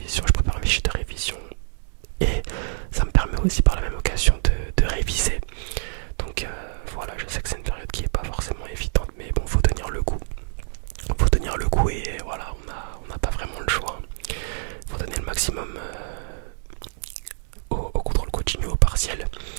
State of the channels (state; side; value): silent; left; digital silence